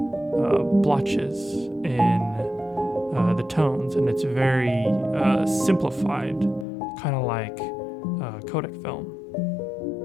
blotches in the tones, and it's very simplified, kind of like Kodak film.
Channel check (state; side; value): drops out; right; at 6.7 s